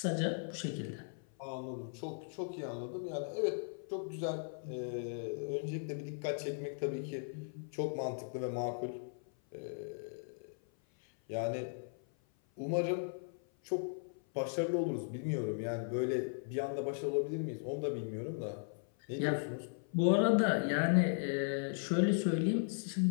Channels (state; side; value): silent; right; 53 dB below the other